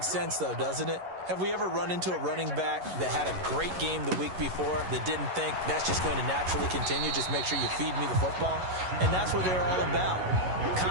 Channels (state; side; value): late; left; 11 ms